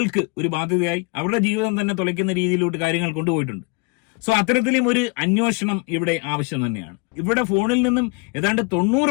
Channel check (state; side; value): quieter; right; 32.2 dB